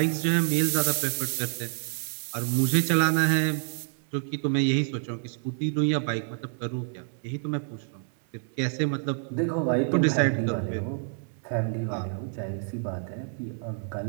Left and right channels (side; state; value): left; silent; 59 dB below the other